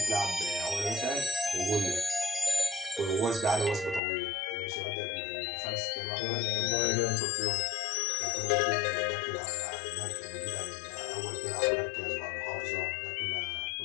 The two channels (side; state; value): right; drops out; at 4.0 s